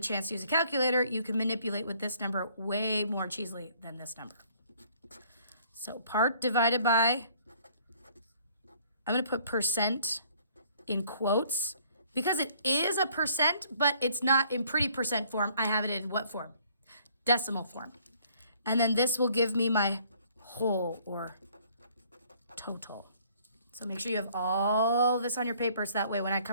chance to use a calculator, you can manipulate with this number way more cheesily than this number. So part divided by, I'm gonna put percent in quotes because it is a percent, but it's not in pretty percent form. I have it in what form? Decimal form. And then this will give me my whole or total. So make sure you have all this on your paper so that way when I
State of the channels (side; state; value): both; inverted; correlation -0.60